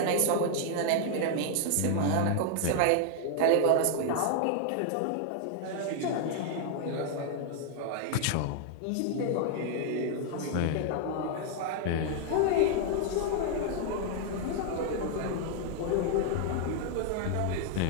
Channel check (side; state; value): both; different; correlation 0.00